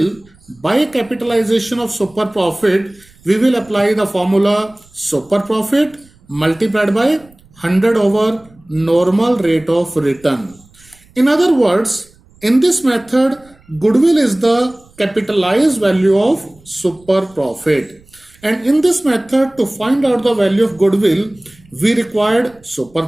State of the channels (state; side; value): noise; right; rumble, 29 dB below the sound